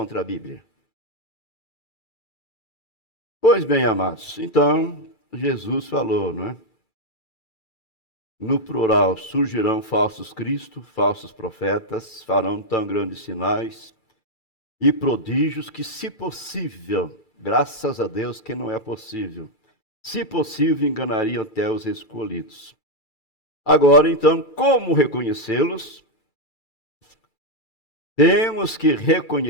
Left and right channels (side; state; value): right; late; 2.3 ms